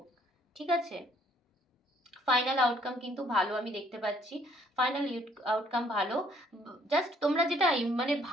ঠিক আছে। ফাইনাল আউটকাম কিন্তু ভালো আমি দেখতে পাচ্ছি, ফাইনাল আউটকাম ভালো, জাস্ট তোমরা যেটা মানে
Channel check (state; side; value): normal; both; correlation 0.64